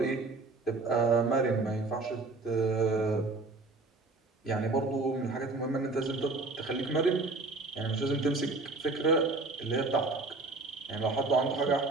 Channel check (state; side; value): quieter; left; 3.5 dB